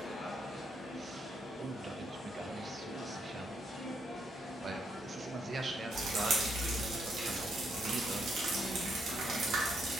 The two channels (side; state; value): both; normal; correlation 0.76